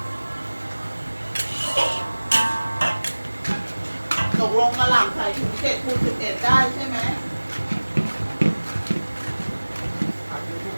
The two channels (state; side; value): inverted; both; correlation -1.00